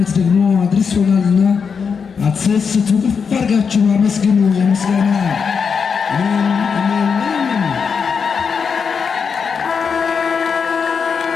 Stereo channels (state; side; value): quieter; right; 6.0 dB